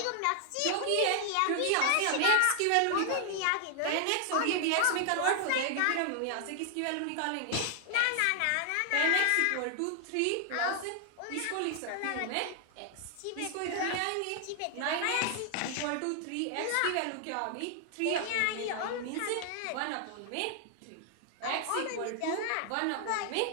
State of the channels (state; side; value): different; both; correlation 0.00